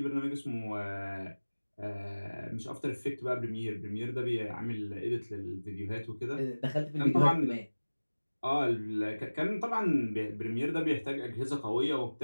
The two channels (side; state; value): both; inverted; correlation -1.00